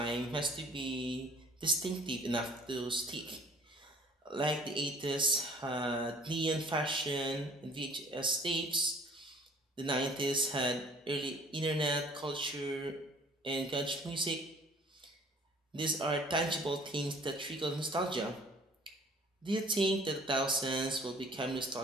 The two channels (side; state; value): both; normal; correlation 0.52